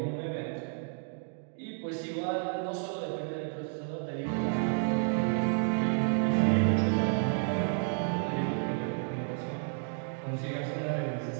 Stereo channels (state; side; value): silent; left; 57 dB below the other